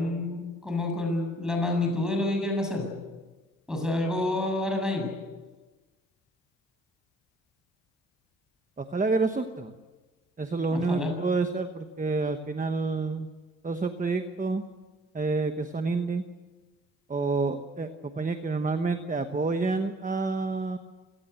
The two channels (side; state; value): both; normal; correlation 0.59